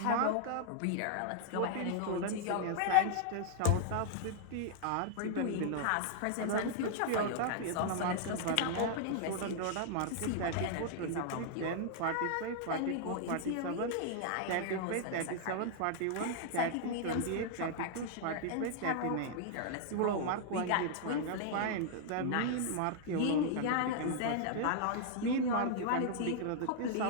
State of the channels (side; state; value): both; different; correlation -0.01